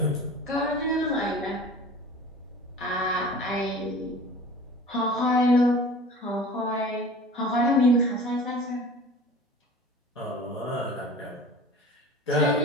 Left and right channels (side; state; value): both; normal; correlation 0.41